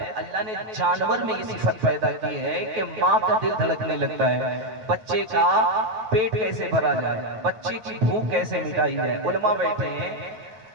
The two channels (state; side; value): late; left; 9.2 ms